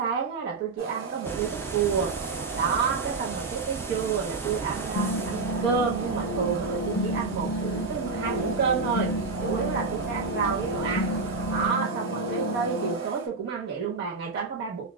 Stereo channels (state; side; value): quieter; left; 4.0 dB